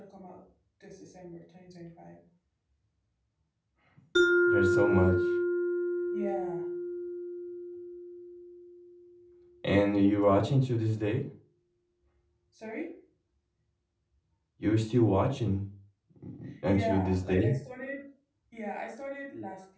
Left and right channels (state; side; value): identical; both; correlation 1.00